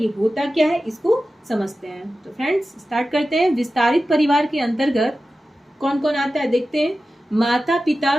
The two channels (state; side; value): normal; both; correlation 0.94